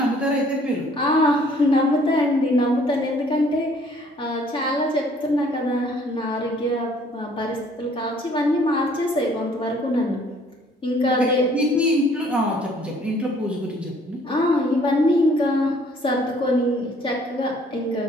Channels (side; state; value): both; normal; correlation 0.59